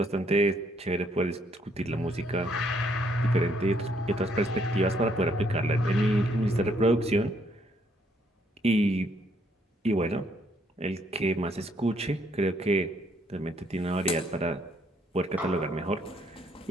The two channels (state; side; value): normal; both; correlation 0.70